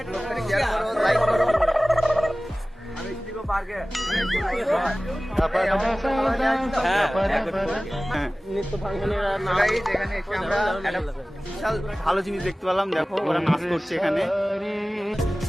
করো, শেয়ার করো, লাইক করো। আমি দিগো পার্কে নিত্য ভাঙনের নাম এখানে এসে আমরা একটা বিশাল ভালো জিনিস দেখতে পেলাম। দেখো ওরা নাচ করছে এখানে।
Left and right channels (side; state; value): both; normal; correlation 0.97